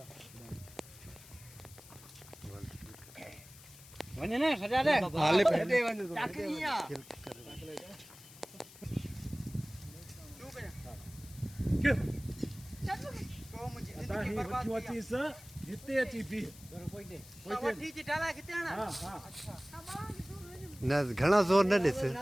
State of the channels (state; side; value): noise; left; hiss, 19 dB below the sound